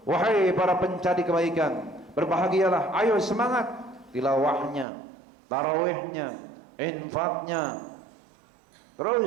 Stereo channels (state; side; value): drops out; left; at 4.9 s